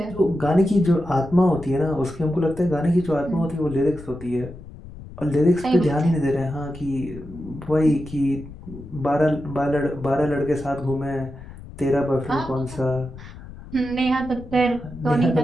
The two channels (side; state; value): left; noise; rumble, 16 dB below the sound